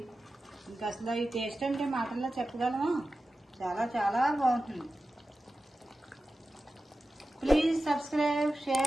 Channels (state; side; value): normal; both; correlation 0.94